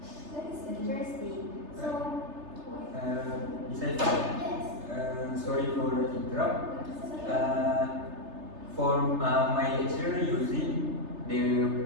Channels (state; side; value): late; left; 3.3 ms